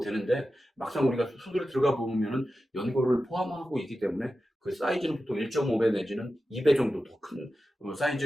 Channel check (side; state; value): both; normal; correlation 0.92